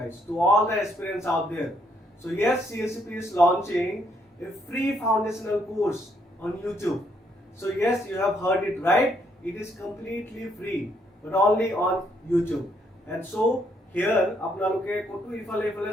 to all the aspirants out there. So yes, CSAP is launching a free foundational course on YouTube. So yes, you have heard it right, it is completely free, but only on YouTube. And so here, apnaloke kotu ifale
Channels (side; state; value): both; normal; correlation 0.72